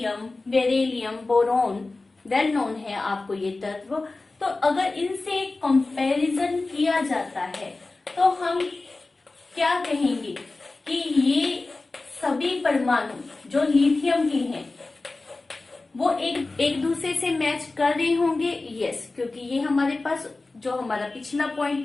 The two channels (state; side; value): quieter; right; 3.4 dB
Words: beryllium, boron, well known है आपको ये तत्व। तो अगर इनसे कंपैरिजन किया जाता है तो हम क्या कहेंगे कि ये सभी परमाणु जो लिथियम के हैं वो एक दूसरे से मैच कर रहे होंगे। यस, क्योंकि ये हमारे पास जो हमारा पिछला पॉइंट